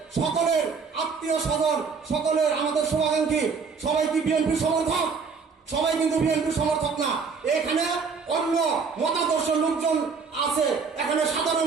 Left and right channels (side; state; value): left; quieter; 5.3 dB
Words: সকলের আত্মীয় স্বজন, সকলের আমাদের শুভাকাঙ্ক্ষী সবাই কি বিএনপি সমর্থক? সবাই কিন্তু বিএনপি সমর্থক না। এখানে অন্য মতাদর্শ লোকজন আছে, এখানে